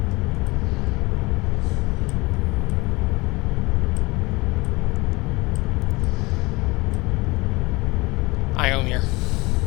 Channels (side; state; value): right; quieter; 23.2 dB